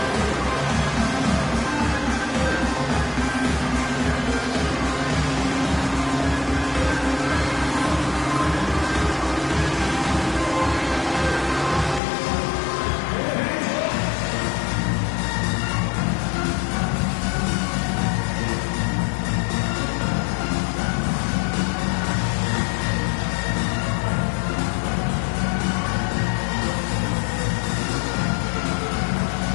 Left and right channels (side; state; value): right; drops out; at 12.0 s